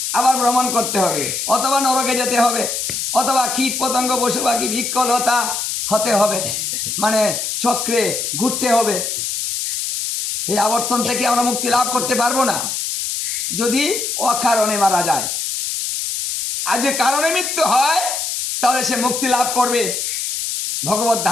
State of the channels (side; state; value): left; noise; hiss, 2 dB below the sound